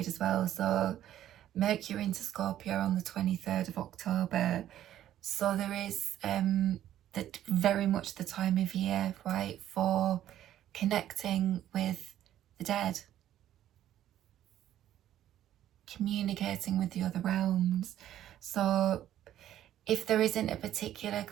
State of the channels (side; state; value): left; quieter; 12.0 dB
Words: as well. So Mercury into Scorpio on the 23rd of October. So there is that very much the time of year, right, for connecting with the dead, communicating with the other realms. So if there isn't a particular